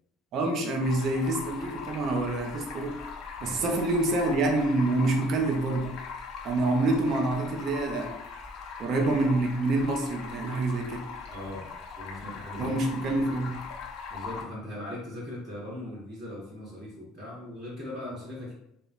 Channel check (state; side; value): normal; both; correlation 0.60